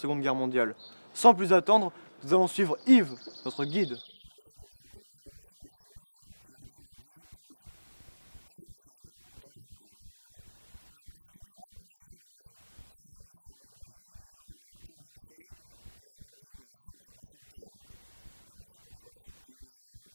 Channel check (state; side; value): inverted; both; correlation -1.00